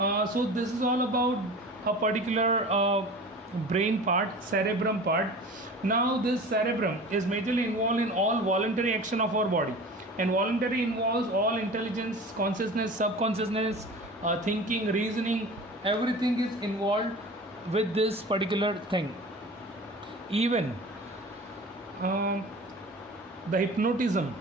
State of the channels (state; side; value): normal; both; correlation 0.38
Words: So this is all about a particular brain part, cerebrum part. Now this cerebrum is majorly involved in all voluntary action of our body, and voluntary involves all intelligence, consciousness, subconsciousness, thinking, reasoning, everything is involved with this particular thing. Even the hypnotism,